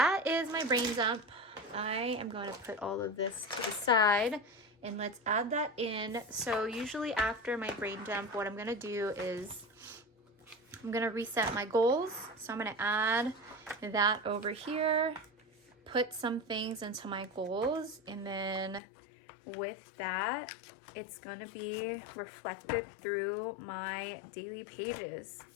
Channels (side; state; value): right; drops out; at 18.8 s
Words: is my brain dump. I am going to put all of this to the side and let's add that in. So usually after my brain dump, what I'm going to do is I'm going to reset my goals. So I'm going to add that over here, put some things into my goals, and then with that, it's going to be reflected through my daily pages